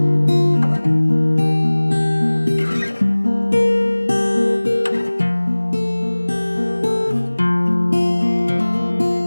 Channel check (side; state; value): both; inverted; correlation -1.00